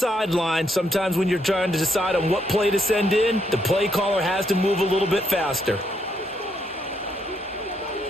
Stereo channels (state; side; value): normal; both; correlation 0.75